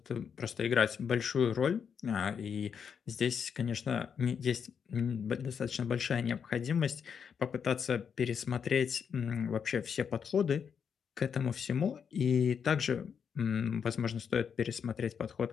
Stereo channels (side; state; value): right; quieter; 7.0 dB